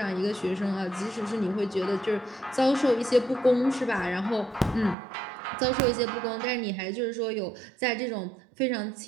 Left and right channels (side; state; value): left; drops out; at 5.0 s